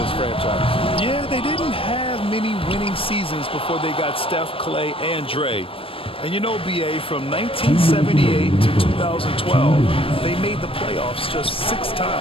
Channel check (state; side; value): late; right; 0.26 ms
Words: franchise. Yeah, they didn't have many winning seasons before they got Steph, Clay, and Dre. And you know, B.A., from 1978 to 2012, they made the playoffs just 6